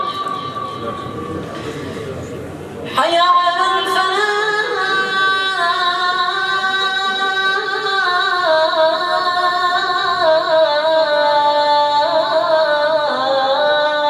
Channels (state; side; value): identical; both; correlation 1.00